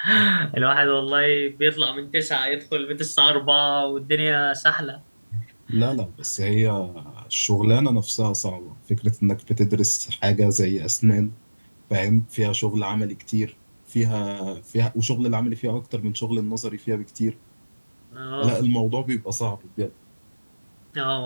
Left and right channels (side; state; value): both; inverted; correlation -1.00